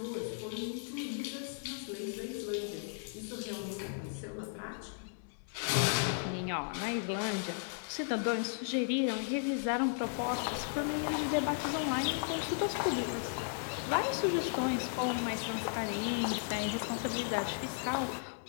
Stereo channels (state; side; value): silent; right; digital silence